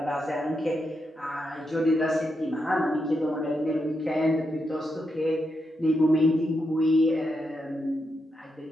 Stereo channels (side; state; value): both; normal; correlation 0.84